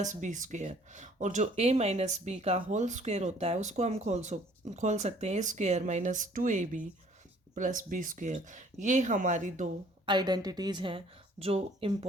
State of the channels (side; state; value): both; normal; correlation 0.57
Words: b², और जो a माइनस बी का होल स्क्वायर होता है उसको हम खोल सकते हैं a² minus 2ab plus b²। ये हमारी 2 आइडेंटिटीज़ हैं जो